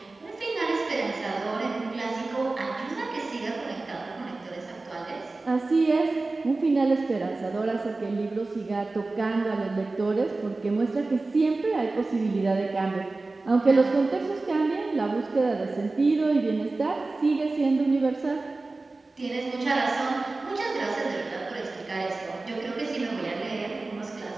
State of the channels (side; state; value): left; quieter; 3.4 dB